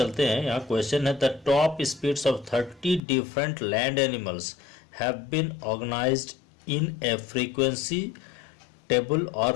हैं। यहाँ क्वेश्चन है the top speeds of 30 different land animals have been organized in a frequency table और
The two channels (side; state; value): right; drops out; at 3.0 s